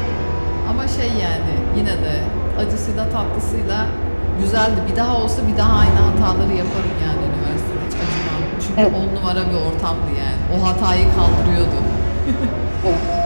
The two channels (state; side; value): inverted; both; correlation -1.00